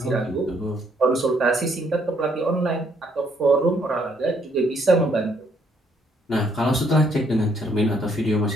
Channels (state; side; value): normal; both; correlation 0.68